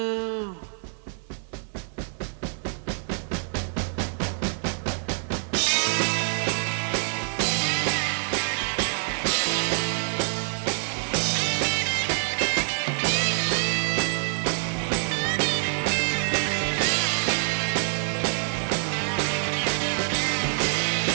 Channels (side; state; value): left; silent; digital silence